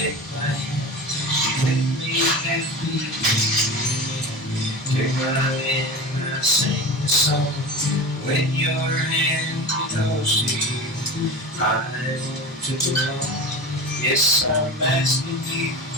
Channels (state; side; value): normal; both; correlation 0.30